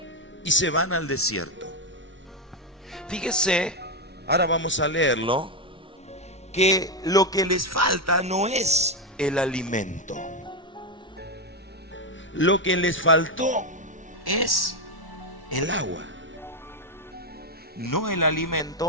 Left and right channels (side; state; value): both; normal; correlation 0.07